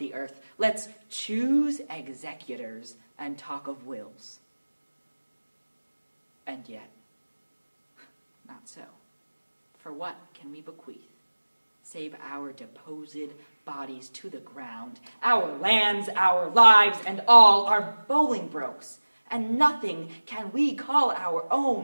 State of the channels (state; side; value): inverted; both; correlation -1.00